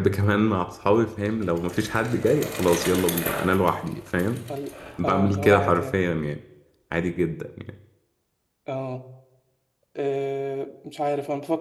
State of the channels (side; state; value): both; identical; correlation 1.00